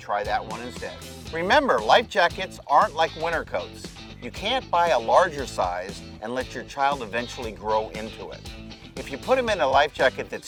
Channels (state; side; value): identical; both; correlation 1.00